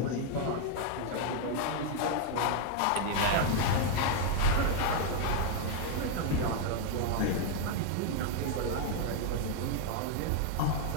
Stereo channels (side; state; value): both; different; correlation 0.00